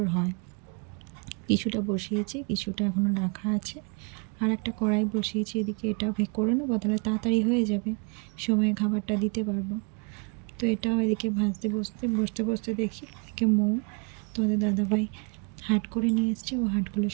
হয়। কিছুটা বসিয়েছি, কিছুটা এখনও রাখা আছে, আর একটা কড়াই বসিয়েছি, এদিকে এটা ভেক করে নেবো, তাহলে তাড়াতাড়ি হয়ে যাবে, সময়ে খাবারটা দিতে পারবো। তো এটাও এদিকে ভাজতে বসতে দেখি এদিকে তোমাদের দাদাভাই হাট করে নিয়ে এসছে, ও হাটগুলো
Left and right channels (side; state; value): left; quieter; 33.8 dB